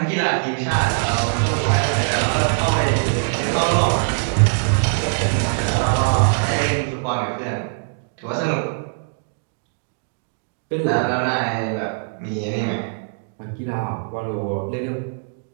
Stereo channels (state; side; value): silent; left; digital silence